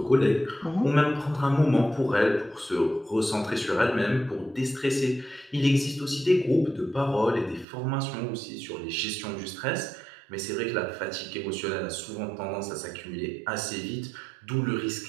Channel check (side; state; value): left; drops out; at 7.7 s